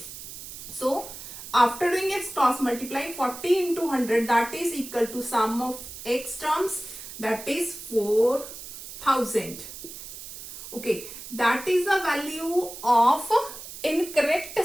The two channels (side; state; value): right; noise; hiss, 12 dB below the sound